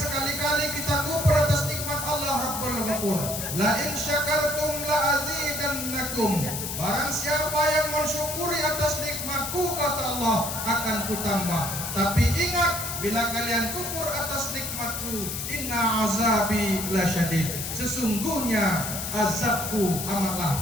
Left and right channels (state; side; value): noise; left; hiss, 5 dB below the sound